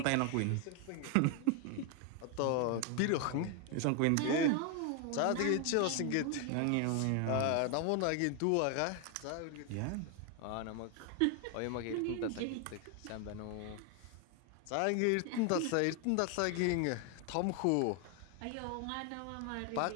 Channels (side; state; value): both; different; correlation 0.01